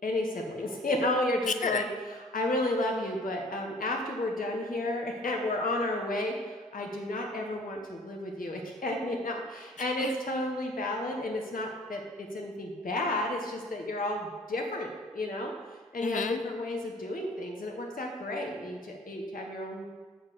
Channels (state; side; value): normal; both; correlation 0.51